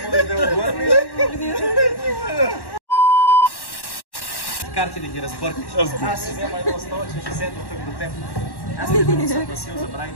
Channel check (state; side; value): late; right; 1.1 ms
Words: Може да обърне. Карти да ги разбъркаш. Аз ще взема едно стола, че ще седна тук до теб. Аз не съм Васил, забравих